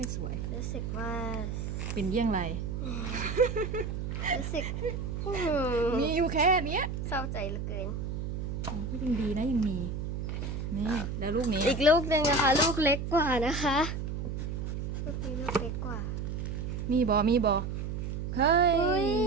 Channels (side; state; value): right; noise; hum, 4 dB below the sound